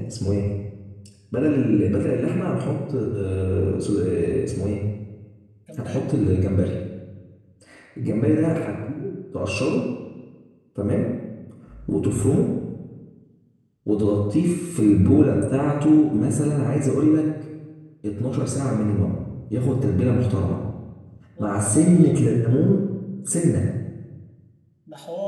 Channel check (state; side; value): identical; both; correlation 1.00